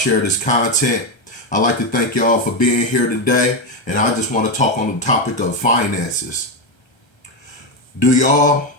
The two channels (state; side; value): late; right; 1.3 ms